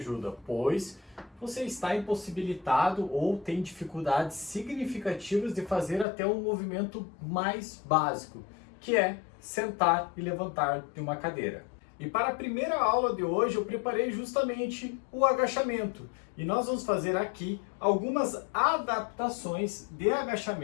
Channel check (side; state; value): right; drops out; at 6.1 s